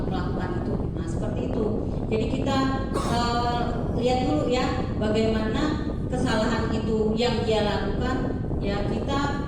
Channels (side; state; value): both; identical; correlation 1.00